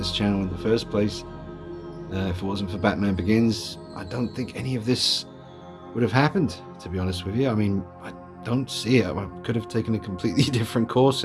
channel in the first place. If it wasn't for Batman Begins, I don't think any of this would have happened, to be honest with you. I mean, I don't see it. I could have taken a completely different course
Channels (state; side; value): identical; both; correlation 1.00